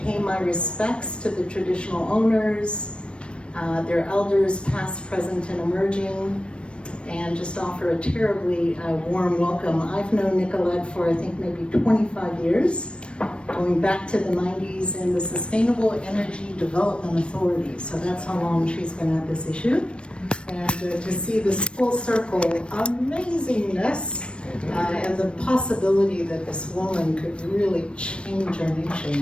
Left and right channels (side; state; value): right; late; 0.058 ms